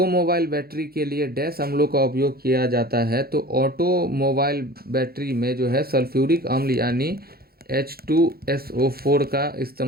बैटरी के लिए डैश अम्लों का उपयोग किया जाता है? तो ऑटोमोबाइल बैटरी में जो है सल्फ्यूरिक अम्ल यानी H2SO4 का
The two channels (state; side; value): late; left; 0.44 ms